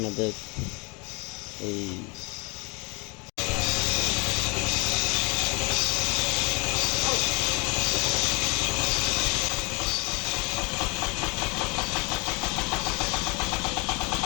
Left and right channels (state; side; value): quieter; right; 28.9 dB